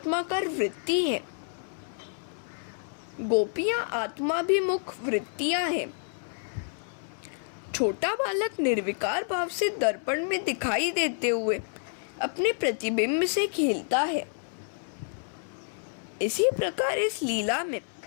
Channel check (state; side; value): silent; right; 59 dB below the other